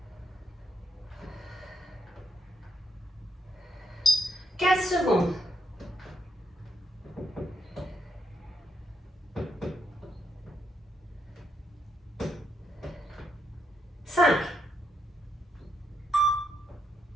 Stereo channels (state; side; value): normal; both; correlation 0.78